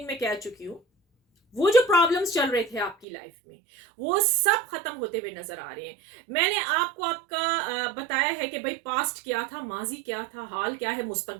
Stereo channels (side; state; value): left; drops out; at 3.1 s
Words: में कह चुकी हूं, वो जो प्रॉब्लम्स चल रहे थे आपकी लाइफ में, वो सब खत्म होते हुए नजर आ रहे हैं। मैंने आपको आपका बताया है कि भाई पास्ट क्या था, माजी क्या था, हाल क्या है,